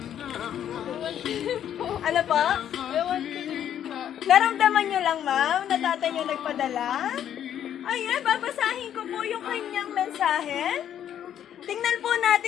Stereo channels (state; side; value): quieter; right; 10.1 dB